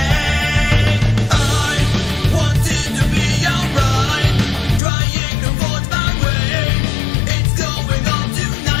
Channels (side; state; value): right; drops out; at 4.8 s